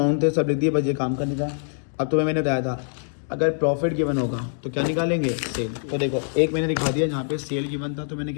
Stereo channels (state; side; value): silent; right; digital silence